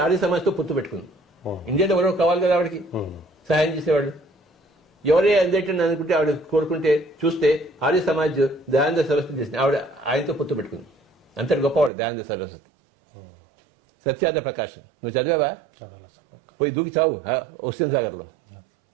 ఆర్య సమాజ్తో పొత్తు పెట్టుకుంది. ఇండియాలో ఎవరో కావాలి కదా ఆవిడకి సహాయం చేసేవాళ్ళు. ఎవరే అందటని అనుకుంటే ఆవిడ కోరుకుంటే చూస్తే ఆర్య సమాజ్ దయానంద సరస్వతి చేసింది. ఆవిడ ఆయనతో పొత్తు పెట్టుకుంది. అంతటి గొప్పవాడు దయానంద సరస్వతి. సత్యార్థ ప్రకాశం నువ్వు చదివావా? పోయి దూకి చావు హుస్సేన్ సాగర్ లో.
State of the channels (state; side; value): drops out; left; at 11.9 s